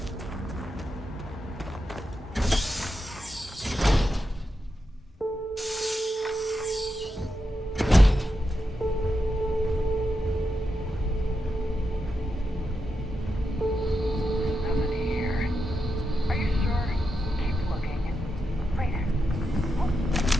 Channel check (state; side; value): normal; both; correlation 0.86